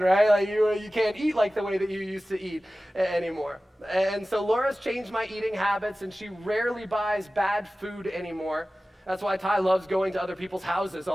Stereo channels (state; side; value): normal; both; correlation 0.96